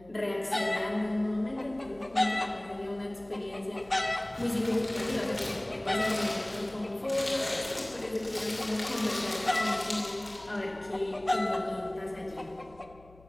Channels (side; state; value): left; noise; hum, 25 dB below the sound